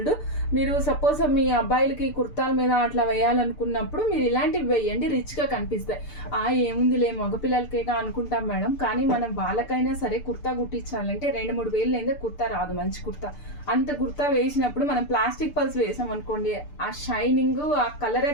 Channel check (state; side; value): late; right; 6.8 ms